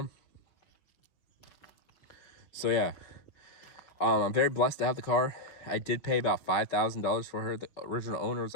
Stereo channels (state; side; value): late; right; 5.7 ms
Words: So yeah, I'm very blessed to have the car. I did pay about $5,000 for her. The original owner was